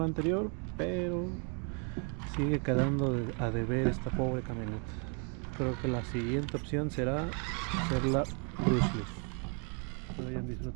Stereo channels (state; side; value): quieter; left; 38.1 dB